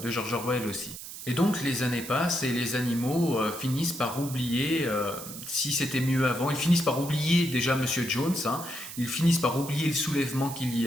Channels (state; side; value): noise; right; hiss, 11 dB below the sound